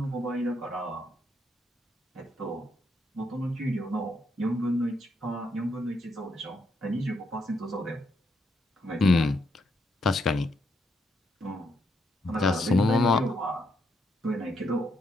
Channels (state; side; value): normal; both; correlation 0.77